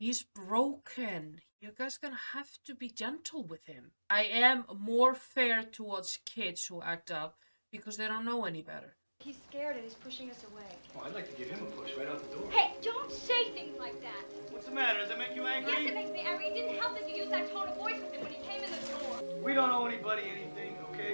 broken. You guys gonna have to be gentle with him. I am more fair towards kids who act up because they don't know any better. He's scared and he's pushing us away. Oh, I'd like to give him a push right out the door. Hey, don't say things like that. What's the matter? Does that make you angry? Yes, it makes me angry. It didn't help that you used that tone of voice with him when he came in the door. We don't owe anybody anything, okay?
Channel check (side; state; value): both; inverted; correlation -1.00